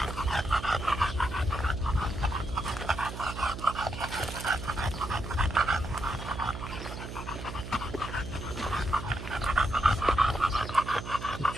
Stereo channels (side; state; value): right; noise; hum, 8 dB below the sound